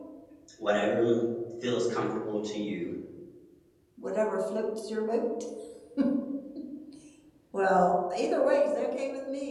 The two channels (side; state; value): both; identical; correlation 1.00